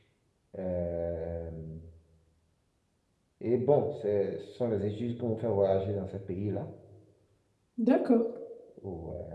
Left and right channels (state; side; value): identical; both; correlation 1.00